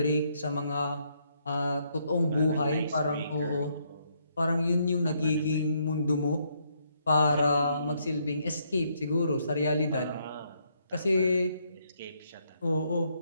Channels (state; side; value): inverted; both; correlation -0.73